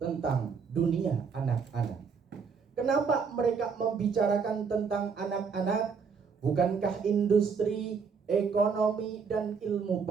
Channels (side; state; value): left; quieter; 5.7 dB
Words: dunia anak-anak. Kenapa mereka membicarakan tentang anak-anak? Bukankah industri, ekonomi, dan ilmu